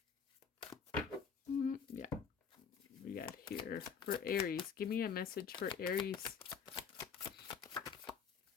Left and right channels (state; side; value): quieter; right; 6.5 dB